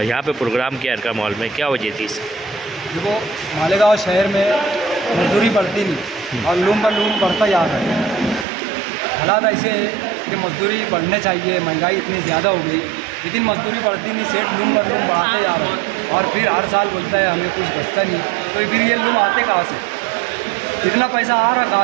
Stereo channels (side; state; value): left; drops out; at 8.5 s